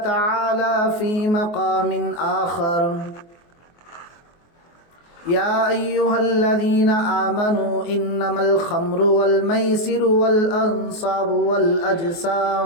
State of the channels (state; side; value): late; right; 24 ms